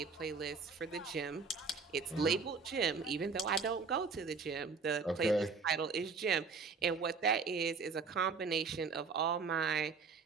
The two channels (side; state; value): left; quieter; 4.9 dB